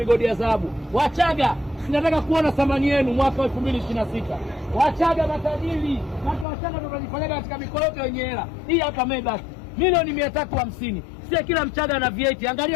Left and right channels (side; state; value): right; drops out; at 6.5 s